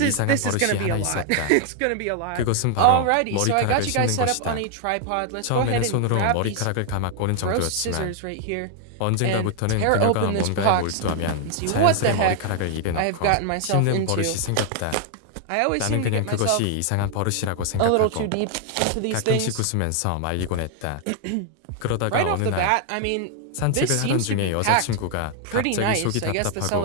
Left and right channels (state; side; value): different; both; correlation 0.00